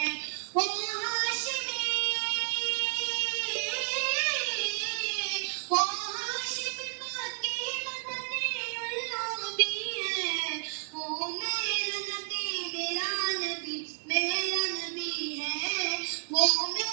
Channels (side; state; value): left; silent; digital silence